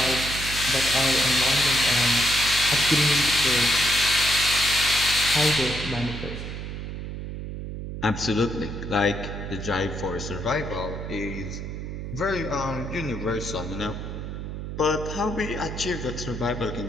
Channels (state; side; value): noise; right; hum, 7 dB below the sound